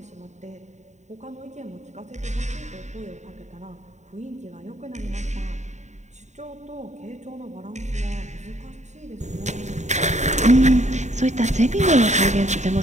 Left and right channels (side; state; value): left; late; 0.34 ms